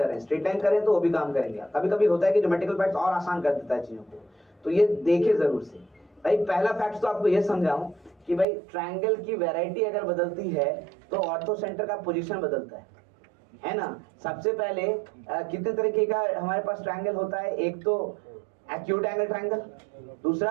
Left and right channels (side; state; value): left; drops out; at 8.5 s